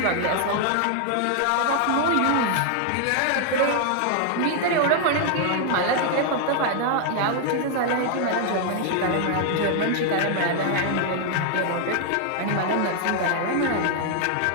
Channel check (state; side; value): different; both; correlation 0.00